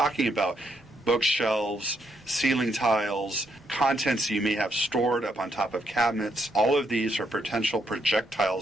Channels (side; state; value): both; normal; correlation 0.76